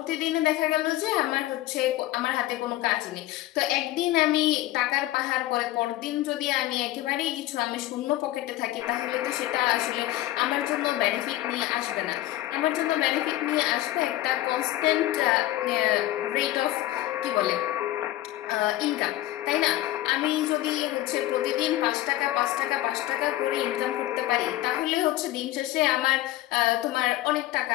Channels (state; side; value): quieter; right; 15.5 dB